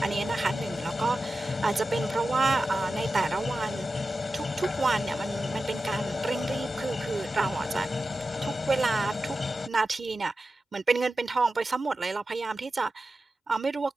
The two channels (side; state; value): both; normal; correlation 0.93